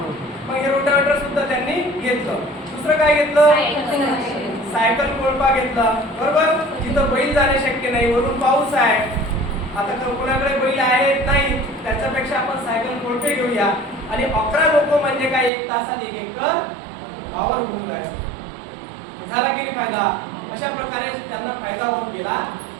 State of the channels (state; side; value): drops out; left; at 15.5 s